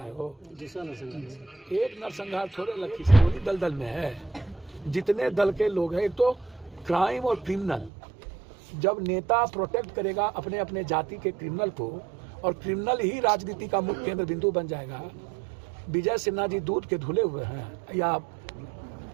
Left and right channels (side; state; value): left; drops out; at 7.9 s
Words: वो, एक नरसंहार थोड़े लखीसराय दलदल में है। जितने दल के लोग हैं, एक तो क्राइम और क्रिमिनल, जब नेता प्रोटेक्ट करेगा अपने अपने जाति के क्रिमिनल को और क्रिमिनल ही राजनीति का मुख्य केंद्र बिंदु बन जाएगा। विजय सिन्हा जी दूध के धुले हुए हैं या